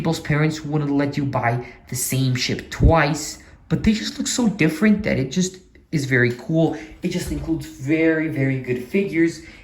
parents wouldn't let you buy the same ship twice, but they just look so different that it just is very cool. It just includes very, very good figures,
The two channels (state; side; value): identical; both; correlation 1.00